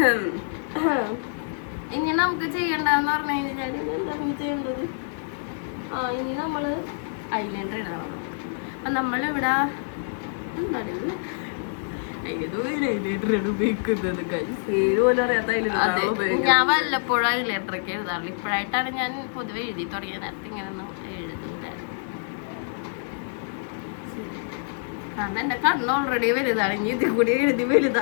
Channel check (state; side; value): silent; right; digital silence